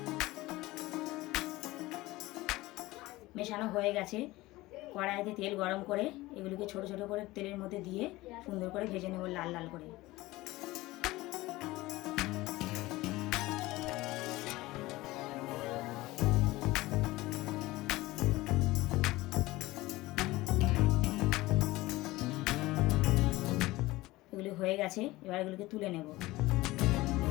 মেশানো হয়ে গেছে। কড়াইতে তেল গরম করে এগুলিকে ছোট ছোট করে তেলের মধ্যে দিয়ে সুন্দর করে ভেজে নেব লাল লাল করে। এগুলি হয়ে গেছে, এবার এগুলিকে তুলে নেব।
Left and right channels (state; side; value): quieter; right; 19.2 dB